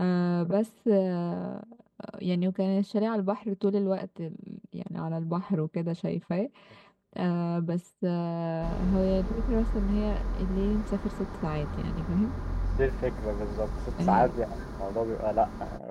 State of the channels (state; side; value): identical; both; correlation 1.00